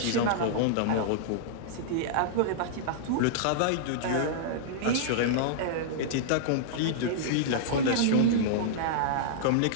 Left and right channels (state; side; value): different; both; correlation -0.02